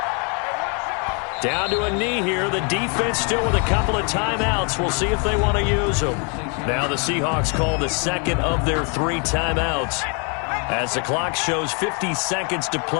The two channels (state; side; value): quieter; right; 36.9 dB